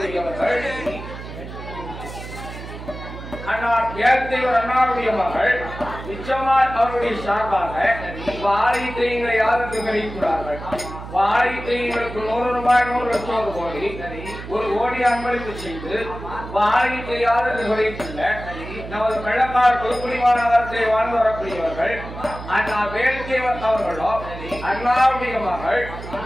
அன்னார் ஏழ்தேவர் அன்னாருடைய மகள் நிச்சயமார் அவருடைய சார்பாக வாழைத்து எங்களை யாருக்கு கிடைக்கிறார்கள் வாழைத்து எங்களுக்கு 100 ரூபாய் 100 லட்சம் கோடி ஒரு கோடி அன்பளிப்பு செய்து வாழைத்து யாருக்கு கிடைத்துள்ள நமது வெள்ளக்கார் குருகுரிவான நகரத்தை வாழ்ந்து வரக்கூடியவர்கள் அண்ணா வேல்தேவர் அவர்களோ அண்ணாவுடைய மகள்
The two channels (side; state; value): right; noise; hum, 11 dB below the sound